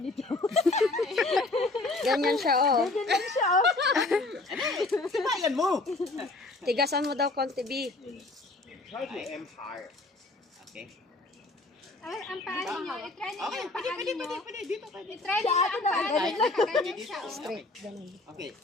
ito. Ganyan siya, oh. Ganyan siya, oh. Sibayan mo! Tigasan mo daw konti, B. I am higher. Okay. Ay, ang paa ninyo. I-try ninyo Okay, yung paa ninyo. pwede. Dito, pwede. I-try ninyo ang paa ninyo. Nakaganyan siya. oh. Straight, ganun. Okay.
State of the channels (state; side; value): quieter; right; 3.1 dB